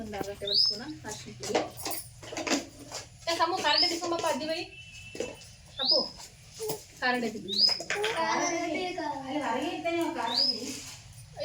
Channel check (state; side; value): identical; both; correlation 1.00